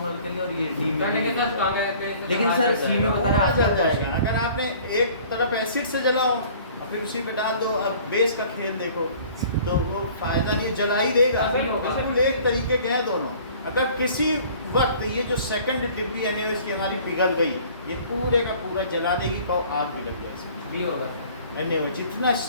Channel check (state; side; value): inverted; both; correlation -0.50